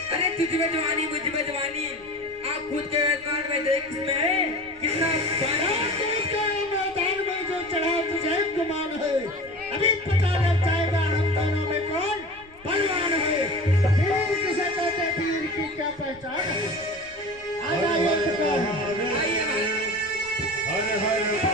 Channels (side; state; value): left; noise; rumble, 26 dB below the sound